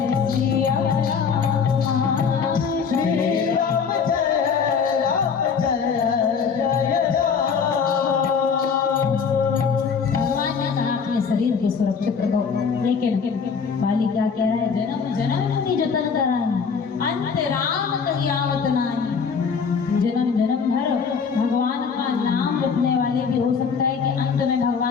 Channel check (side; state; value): right; quieter; 6.0 dB